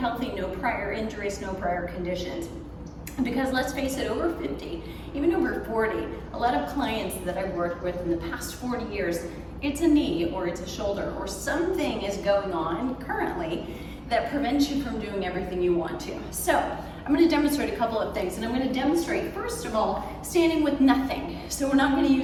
no prior injuries, no prior conditions. Because let's face it, over 50, even over 40, a lot of clients that I've worked with in the past 40 years, it's a knee or it's a shoulder or something is going on currently that prevents you from doing everything you want to. So I'm going to demonstrate a couple of things, and I'm going to demonstrate, first of all, standing with nothing. So we're not going to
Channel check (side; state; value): both; identical; correlation 1.00